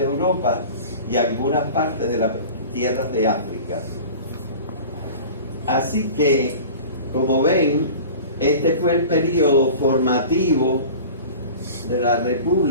Europa y algunas partes de las tierras de África. Así que, como ven, este fue el periodo formativo de la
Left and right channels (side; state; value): both; inverted; correlation -0.38